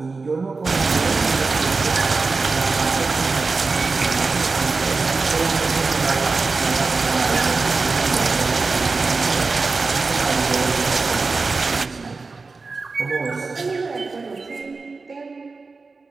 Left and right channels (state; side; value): quieter; left; 4.1 dB